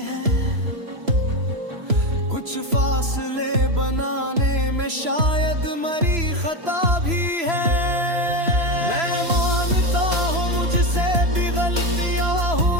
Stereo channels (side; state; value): left; late; 3.0 ms